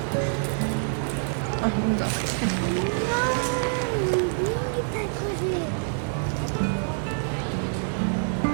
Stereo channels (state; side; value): silent; left; digital silence